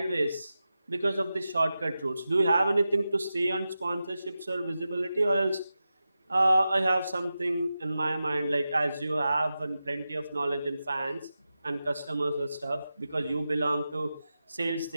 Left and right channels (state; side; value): inverted; both; correlation -0.92